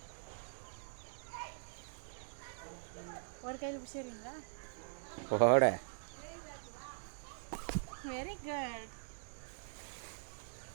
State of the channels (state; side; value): silent; left; digital silence